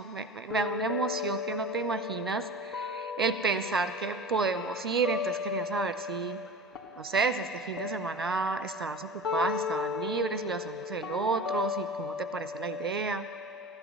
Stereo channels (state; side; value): normal; both; correlation 0.34